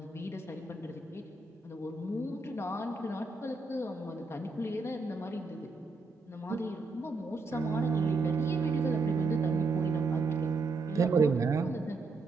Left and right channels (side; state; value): left; quieter; 3.7 dB